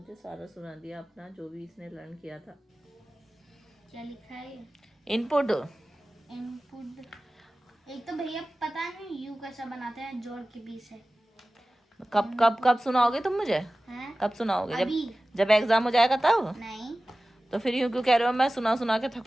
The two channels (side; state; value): both; normal; correlation 0.97